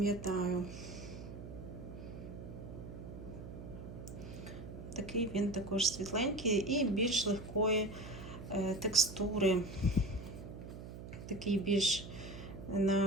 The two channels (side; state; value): right; noise; hum, 11 dB below the sound